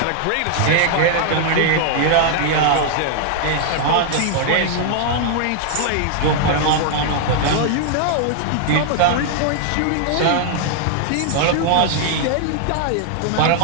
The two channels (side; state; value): both; different; correlation 0.00